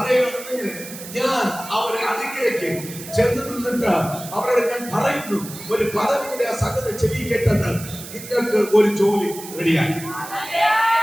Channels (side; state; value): right; noise; hiss, 13 dB below the sound